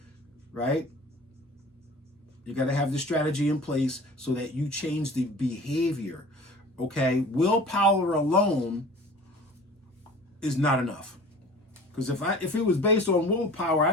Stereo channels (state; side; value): normal; both; correlation 0.42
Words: right? You got to have the strategy in place so that you change the behavior, okay? Willpower alone is not enough. Because if it was based on willpower,